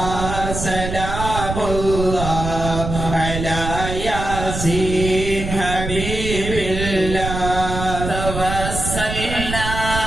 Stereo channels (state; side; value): noise; right; rumble, 5 dB below the sound